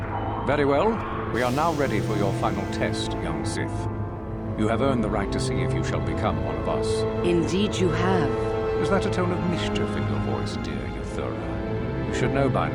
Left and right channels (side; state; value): both; identical; correlation 1.00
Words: Very well. We are now ready for your final test, young Sith. You have earned the right to see if you shall become one of us. Indeed you have. Is that a tone of mischief in your voice, dear Euthura? You should know by